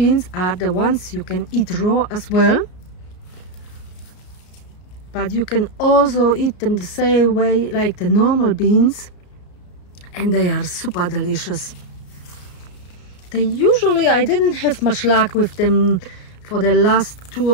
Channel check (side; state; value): right; late; 33 ms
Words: are the ones you can eat raw as well, but you can also eat them the same way like the normal beans, and they are super delicious. They usually, I didn't have much luck with them for the last 2